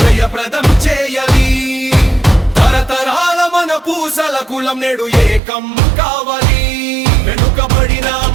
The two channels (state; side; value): drops out; left; at 5.4 s